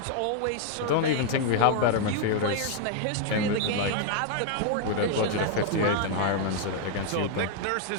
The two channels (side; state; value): both; different; correlation 0.00